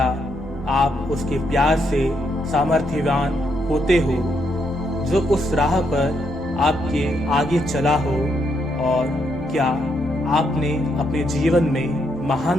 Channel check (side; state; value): both; normal; correlation 0.77